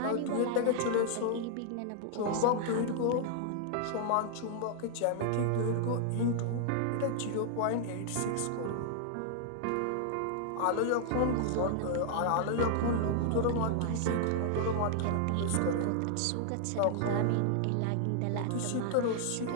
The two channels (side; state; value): both; different; correlation 0.00